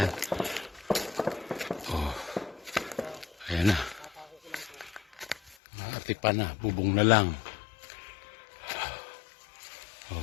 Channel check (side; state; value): right; drops out; at 5.6 s